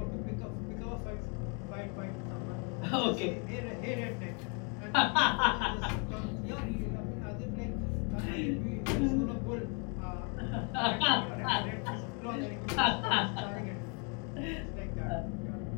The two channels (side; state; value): right; quieter; 36.3 dB